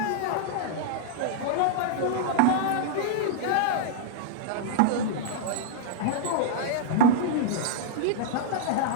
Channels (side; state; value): both; different; correlation -0.02